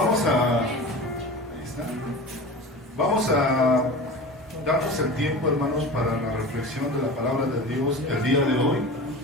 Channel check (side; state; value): both; normal; correlation 0.33